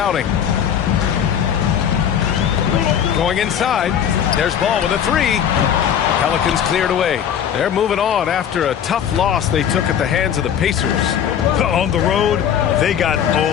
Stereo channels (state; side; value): quieter; right; 9.0 dB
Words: Going inside. There's Ball with a 3. Pelicans cleared away. They're moving on after a tough loss they took at the hands of the Pacers. On the road, they got